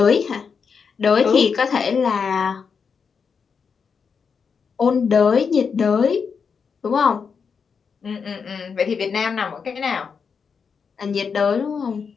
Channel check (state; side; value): quieter; right; 5.9 dB